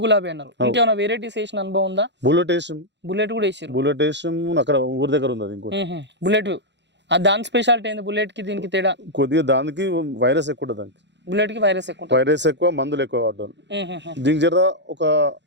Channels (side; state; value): left; late; 0.52 ms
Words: గులాబీ అన్నారు. ఇంకేమైనా వెరైటీస్ వేసిన అనుభవం ఉందా? బుల్లెట్ కూడా వేసారు. బుల్లెట్ వేసాం అక్కడ ఊరి దగ్గర ఉంది. ఇంకోటి బుల్లెట్. దాని స్పెషాలిటీ ఏంది? బుల్లెట్ కి దీనికి తేడా? కొద్దిగా దానికి వైరస్ ఎక్కువ ఉంటుంది. దానికి బుల్లెట్ కి వైరస్ ఎక్కువ, మందులు ఎక్కువ వాడతారు. దీనికి జర ఒక